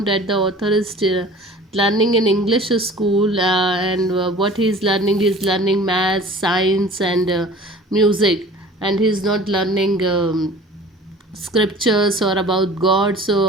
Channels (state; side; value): normal; both; correlation 0.44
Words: the author is learning in English school, and what he is learning maths, science, and music, and he's not learning scriptures or about God,